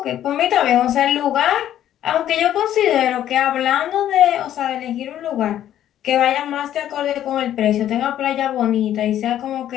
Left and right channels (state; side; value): quieter; right; 11.5 dB